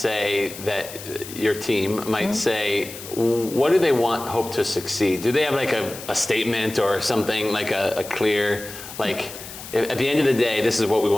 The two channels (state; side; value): noise; left; hiss, 13 dB below the sound